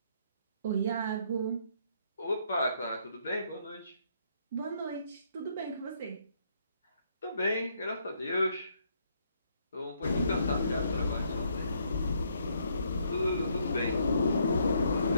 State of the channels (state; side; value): inverted; both; correlation -0.71